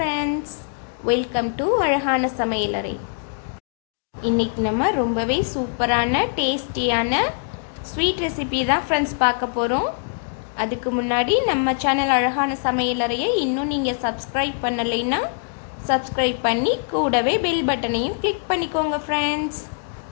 welcome to அழகான சமையலறை. இன்றைக்கி நம்ம ரொம்பவே சூப்பரான டேஸ்டியான ஸ்வீட் ரெசிபி தான் ஃப்ரெண்ட்ஸ் பார்க்க போகிறோம். அதுக்கு முன்னாடி நம்ம சேனல் அழகான சமையலறையை இன்னும் நீங்கள் சப்ஸ்கிரைப் பண்ணலைன்னா சப்ஸ்கிரைப் பண்ணி கூடவே பெல் பட்டனையும் கிளிக் பண்ணிக்கோங்க ஃப்ரெண்ட்ஸ்.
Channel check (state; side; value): silent; right; digital silence